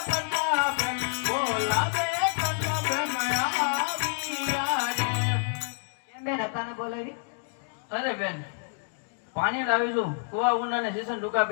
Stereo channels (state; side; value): silent; right; 59 dB below the other